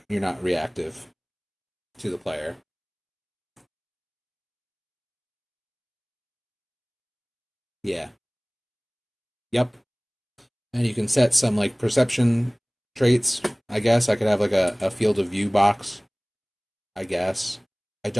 not reactive to the player. Yeah. Yep. And you can set some like perception traits. I guess I could have like a field of view box. I guess. I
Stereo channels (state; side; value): identical; both; correlation 1.00